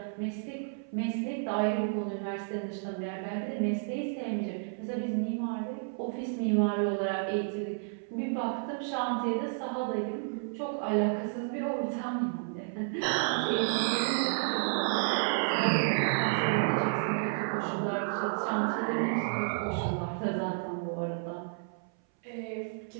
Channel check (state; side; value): silent; left; 57 dB below the other